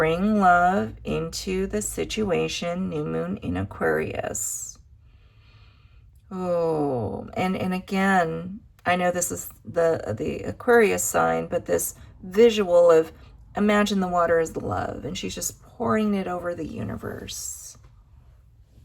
love into the situation. New moon in Aquarius. Oh, and again, I know this is the Aquarius sign, but this visual of imagine the water as the love, and she's just pouring it over the universe,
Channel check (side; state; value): both; identical; correlation 1.00